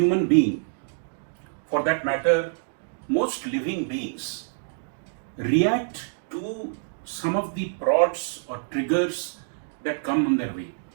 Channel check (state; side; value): silent; left; digital silence